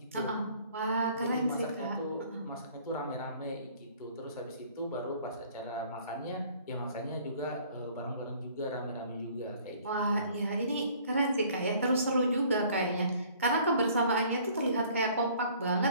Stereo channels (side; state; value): both; inverted; correlation -0.56